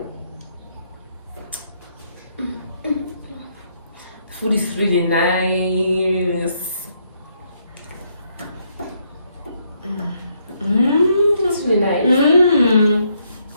The food is really nice. Mmm. That's really nice. Mmm.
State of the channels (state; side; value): inverted; both; correlation -0.74